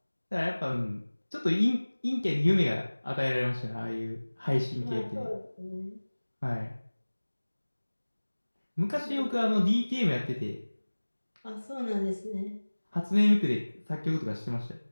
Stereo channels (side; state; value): both; inverted; correlation -1.00